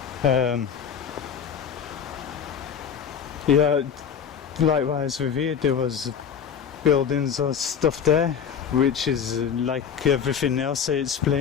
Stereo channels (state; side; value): quieter; right; 7.5 dB